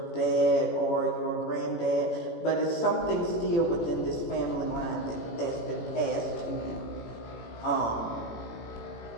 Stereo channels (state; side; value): late; right; 18 ms